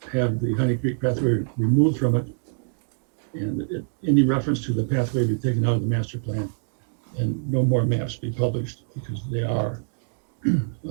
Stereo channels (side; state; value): left; silent; digital silence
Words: have the Honey Creek pathway removed from it, And any reference to the pathway be taken out of the master plan, and no more maps be published, because they are an